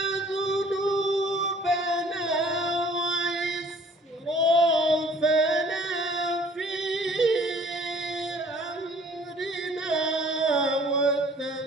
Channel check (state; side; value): normal; both; correlation 0.54